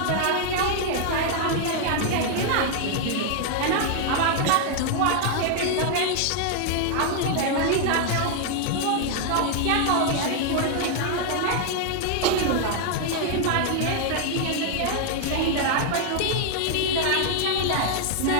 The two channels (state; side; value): different; both; correlation 0.00